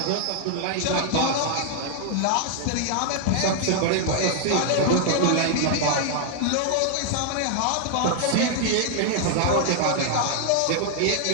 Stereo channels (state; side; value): different; both; correlation 0.00